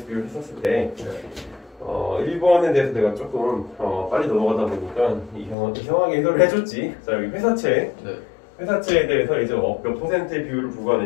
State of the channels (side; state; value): right; drops out; at 5.6 s